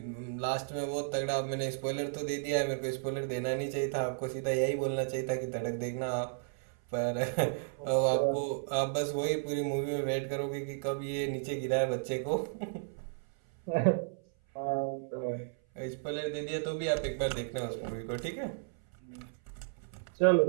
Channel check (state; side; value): silent; left; 55 dB below the other